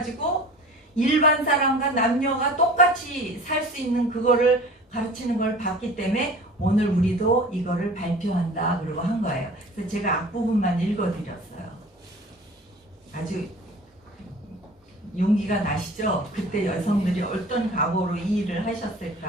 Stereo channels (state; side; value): normal; both; correlation 0.42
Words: 일반 사람과 남녀가 똑같이 살 수 있는 그거를 가르치는 걸 봤기 때문에 오늘 우리도 이거를 발표한다 그러고 한 거예요. 그래서 제가 앞부분만 읽어드렸어요. 아주 용기가 나시죠? 그때 여성들이 어떤 각오로 이 일을